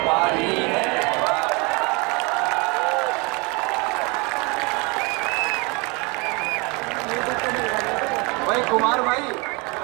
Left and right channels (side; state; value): left; quieter; 28.7 dB